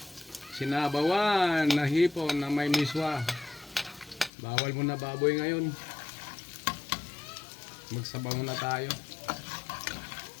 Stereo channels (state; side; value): drops out; right; at 4.3 s